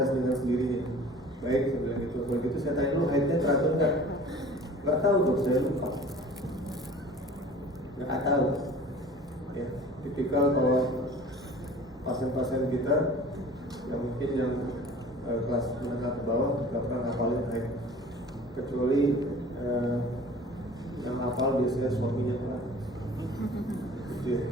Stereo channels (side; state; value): both; normal; correlation 0.45